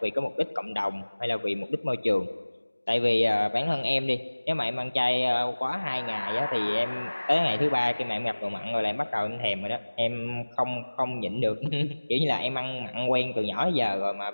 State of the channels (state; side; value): inverted; both; correlation -1.00